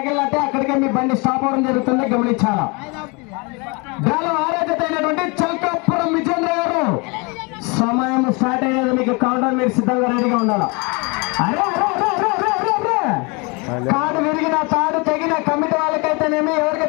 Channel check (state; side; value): quieter; right; 29.6 dB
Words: అక్కడికే మీ బండి స్టాప్ అవడం జరుగుతుంది, గమనించాలా. డ్రాలో 6వ జత అయినటువంటి చల్కాపురం విజేంద్ర గారు సమయం స్టార్ట్ అయ్యేది. మీకు కౌంటర్ మీరు సిద్ధంగా రెడీగా ఉండాలా. తాడు విరిగిన తాడు తెగిన కమిటీ వాళ్ళకైతేనేమి